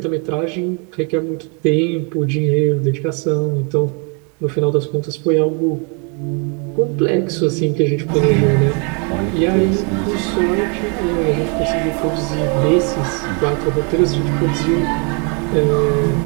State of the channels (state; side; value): quieter; left; 35.6 dB